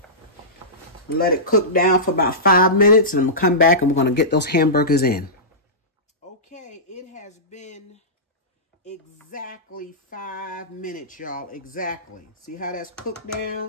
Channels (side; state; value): both; normal; correlation -0.18